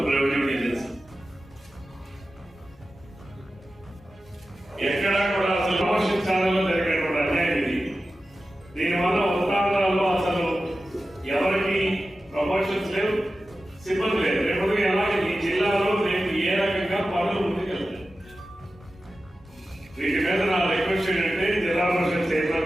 రెవెన్యూ డివిజన్స్. ఎక్కడా కూడా అసలు ప్రమోషన్లో జరిగినటువంటి అన్యాయం ఇది. దీనివల్ల ఉత్తరాంధ్రాల్లో అసలు ఎవరికి ప్రమోషన్స్ లేవు, సిబ్బంది లేదు. రేపు అలాగే ఈ జిల్లాలో రేపు ఏ రకంగా పనులు ముందుకెళ్తాయి. వీటి మీద నా రిక్వెస్ట్ ఏంటంటే జిల్లా పరిషత్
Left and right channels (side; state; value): both; normal; correlation 0.93